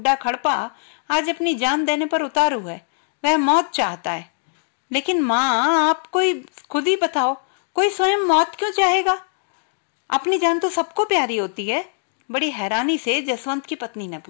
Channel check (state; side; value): silent; right; digital silence